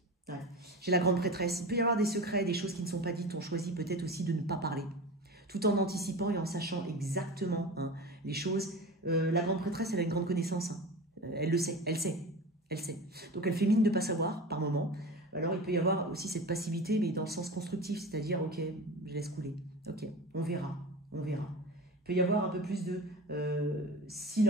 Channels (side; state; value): both; normal; correlation 0.31